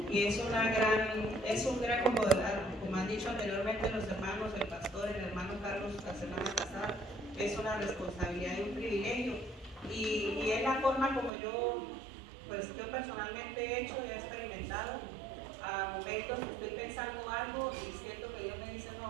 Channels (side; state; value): left; drops out; at 11.3 s